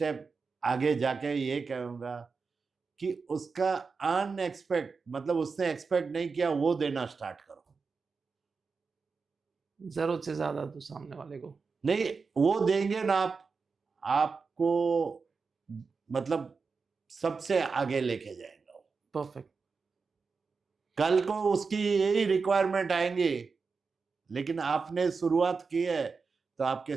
आगे जाके ये कहूँगा कि उसका अनएक्सपेक्ट, मतलब उसने एक्सपेक्ट नहीं किया वो देना स्टार्ट करो। जरूरत से ज़्यादा दो सामने वाले को। नहीं, वो देंगे ना आपको मतलब सबसे आगे लेके जाएगा वो। परफेक्ट। कल को उसकी यही रिक्वायरमेंट आएंगी, लेकिन आपने शुरुआत की है तो आपके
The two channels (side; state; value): left; quieter; 4.8 dB